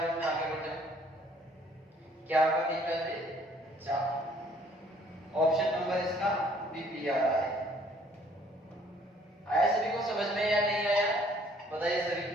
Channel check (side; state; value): both; normal; correlation 0.60